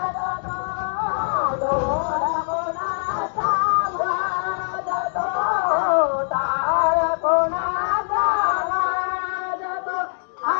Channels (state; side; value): silent; right; digital silence